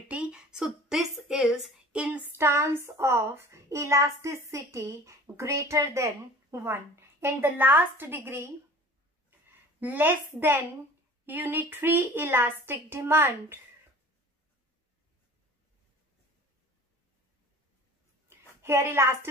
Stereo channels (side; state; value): both; normal; correlation 0.43